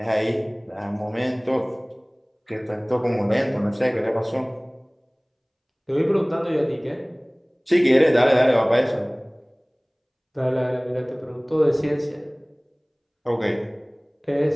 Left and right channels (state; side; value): identical; both; correlation 1.00